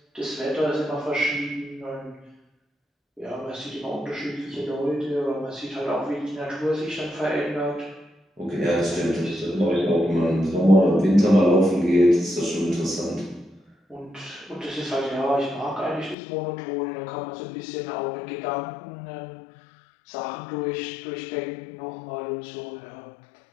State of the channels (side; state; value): right; drops out; at 16.2 s